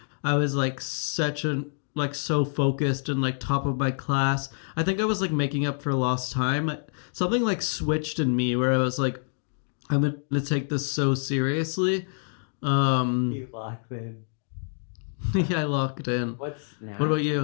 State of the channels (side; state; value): right; silent; 60 dB below the other